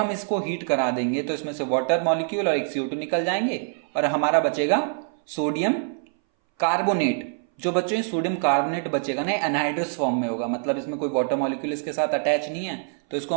इसको हीट करा देंगे तो इसमें से वाटर मॉलिक्यूल और एक CO2 निकल जाएंगे और हमारा बचेगा सोडियम कार्बोनेट। जो बच्चों सोडियम कार्बोनेट बचेगा ना, एनहाइड्रस फॉर्म में होगा, मतलब इसमें कोई वाटर मॉलिक्यूल इसके साथ अटैच नहीं है, तो इसको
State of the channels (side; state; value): left; silent; 60 dB below the other